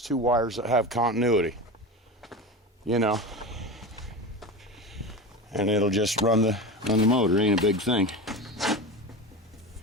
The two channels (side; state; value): both; normal; correlation 0.26